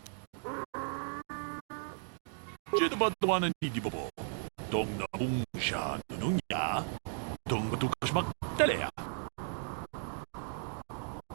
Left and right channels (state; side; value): silent; left; digital silence